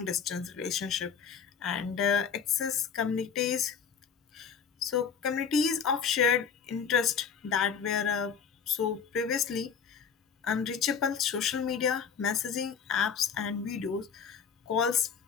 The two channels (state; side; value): quieter; right; 6.8 dB